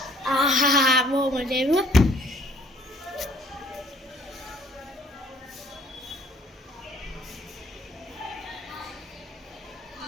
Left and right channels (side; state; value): both; normal; correlation 0.58